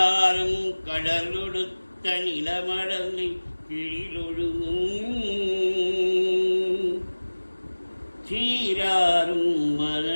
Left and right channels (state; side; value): inverted; both; correlation -1.00